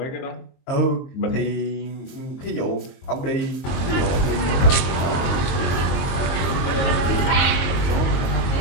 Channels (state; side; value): late; right; 22 ms